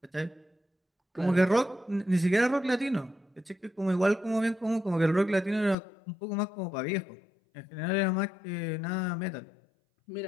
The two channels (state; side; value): drops out; right; at 5.8 s